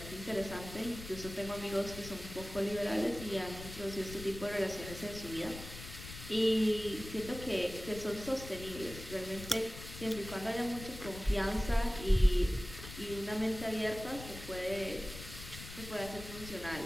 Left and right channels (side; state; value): left; noise; rumble, 12 dB below the sound